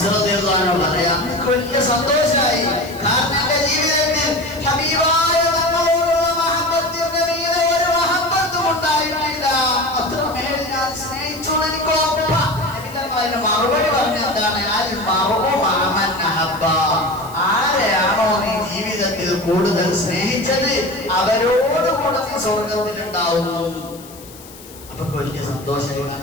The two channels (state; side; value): noise; left; hiss, 20 dB below the sound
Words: റളിയല്ലാഹു അൻഹു പറയാ, എനിക്ക് വലിയ സന്തോഷമായി. കാരണം എന്റെ ജീവിതത്തിൽ ഹബീബായ തങ്ങളോടുള്ള മഹബത്തിന്റെ മീതെ ഒരു മഹബത്തും ഉണ്ടായിട്ടില്ല. അത്രമേൽ ഞാൻ സ്നേഹിച്ചു. എനിക്ക് അതിന് മറുപടി പറഞ്ഞ എന്താണ്? ആരെയാണോ നീ ജീവിതത്തിൽ കൂടുതൽ സ്നേഹിച്ചത് അവരോടുകൂടെ നീ സ്വർഗത്തിലുണ്ടാവുന്നു. അപ്പൊ വലിയ സന്തോഷമായി.